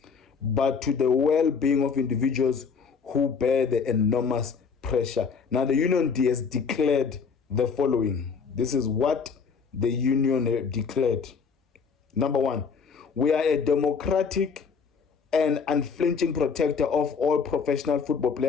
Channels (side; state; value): right; quieter; 5.7 dB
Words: but to the well-being of individuals who bear the enormous pressure. Now, the union has declared the following. This is what the union declared. Number one, We are a democratic and unflinching protector of all professional football